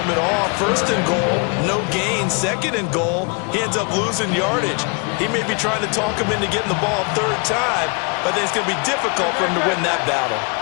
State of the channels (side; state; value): right; quieter; 34.9 dB